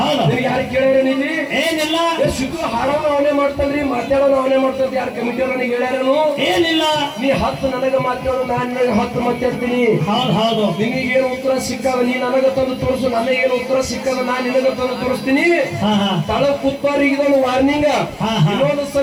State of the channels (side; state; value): both; identical; correlation 1.00